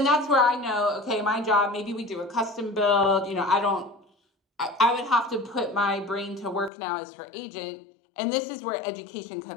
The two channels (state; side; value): drops out; right; at 6.7 s